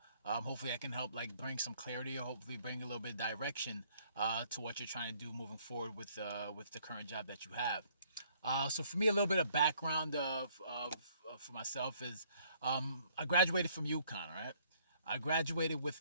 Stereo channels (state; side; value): inverted; both; correlation -0.63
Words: hopefully I can help like bring some clarity, or hopefully bring a little bit of direction to what you're trying to do moving forward with the current job that you have. So for me, a little bit of background of for myself is I graduated from UConn, right? I graduated with